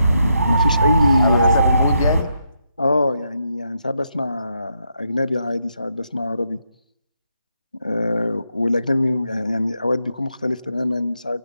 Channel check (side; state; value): both; inverted; correlation -0.80